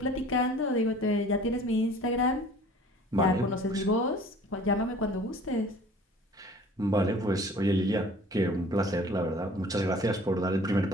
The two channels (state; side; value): normal; both; correlation 0.49